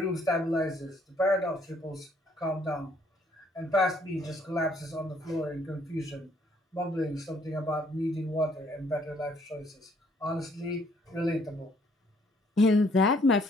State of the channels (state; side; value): normal; both; correlation 0.65